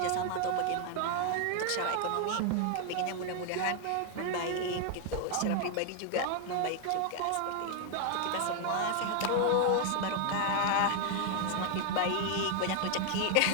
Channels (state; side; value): different; both; correlation 0.00